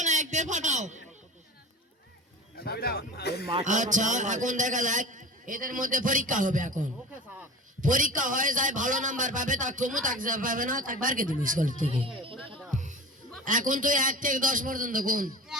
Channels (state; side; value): normal; both; correlation 0.35